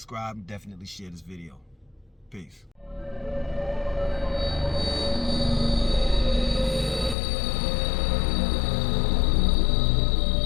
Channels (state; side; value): drops out; right; at 7.2 s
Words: and definitely share this video. Peace.